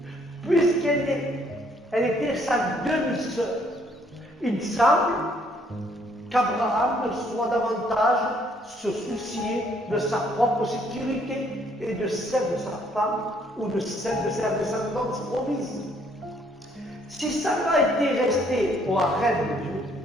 puisqu'elle était sa demi-sœur. Il semble qu'Abraham ne soit davantage se soucier de sa propre sécurité et de celle de sa femme ou de celle de sa descendance promise. Si Sarah était restée au harem de Dieu,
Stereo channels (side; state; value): both; normal; correlation 0.66